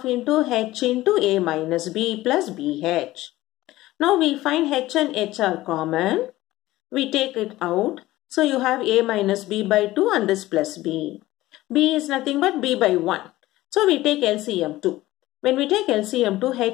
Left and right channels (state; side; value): quieter; right; 16.9 dB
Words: into H into A minus B plus BH. Now we find H and H are common. We take it out. So you have A minus B by 2 and this plus B. B is nothing but B by 1. So we take LCM 2. When we take LCM 2,